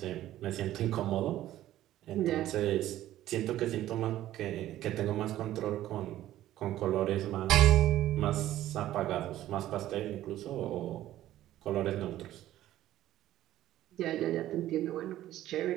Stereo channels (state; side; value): quieter; left; 13.7 dB